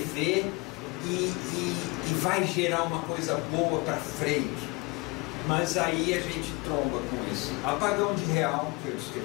e vai gerar uma coisa boa para frente. Mas aí a gente tromba com esse apagão de real que eu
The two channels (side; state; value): right; quieter; 26.8 dB